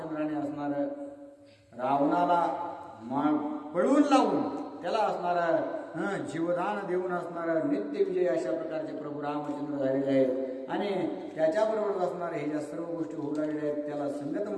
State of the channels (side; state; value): both; identical; correlation 1.00